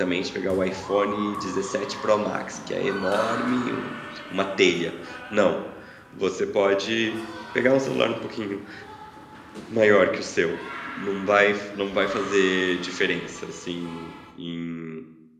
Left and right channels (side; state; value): both; identical; correlation 1.00